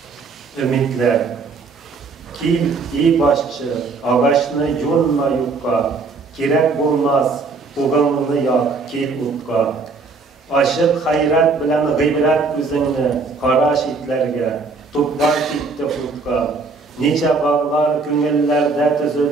Ümitler, kil iyi başçı, ağaçını yolma yukka, kirek bulmaz, buğanını yak, kil utka. Aşık hayrat bilen gıybret üzünü, kara şitlerge, tuplar gitti futka. Nice bağlar küngüllerde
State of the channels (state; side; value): quieter; left; 4.2 dB